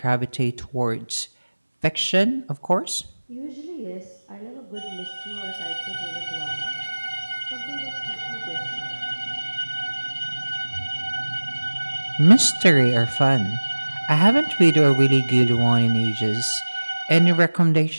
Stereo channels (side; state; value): both; inverted; correlation -1.00